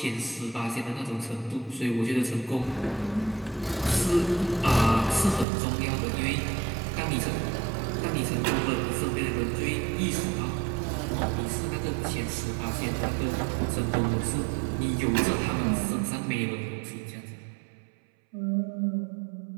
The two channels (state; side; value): drops out; left; at 5.5 s